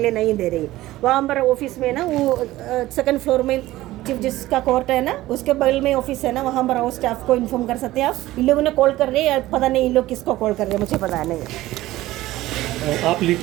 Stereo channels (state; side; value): quieter; left; 16.5 dB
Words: लिए नहीं दे रही। वहाँ पर ऑफिस में ना वो सेकंड फ्लोर में चीफ जस्टिस का कोर्ट है ना, उसके बगल में ऑफिस है ना, वहाँ पर आओ स्टाफ को इन्फॉर्म कर सकते हैं आप। इन लोगों ने कॉल कर रहे हैं, पता नहीं इन लोग किसको कॉल कर रहे हैं, मुझे पता नहीं है। आप